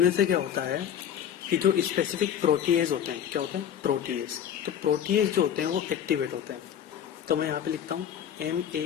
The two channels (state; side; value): quieter; right; 9.4 dB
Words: से क्या होता है कि जो स्पेसिफिक प्रोटीएज होते हैं, क्या होते हैं, प्रोटीएज। तो प्रोटीएज जो होते हैं वो एक्टिवेट होते हैं। तो मैं यहाँ पे लिखता हूँ